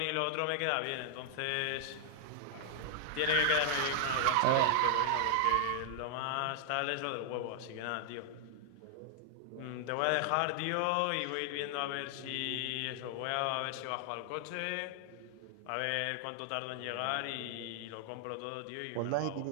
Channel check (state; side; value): different; both; correlation -0.01